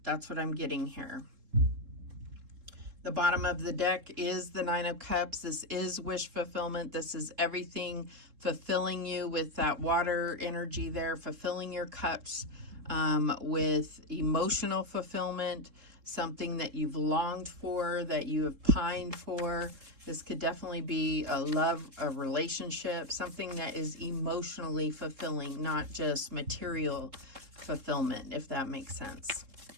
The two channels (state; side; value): late; left; 3.7 ms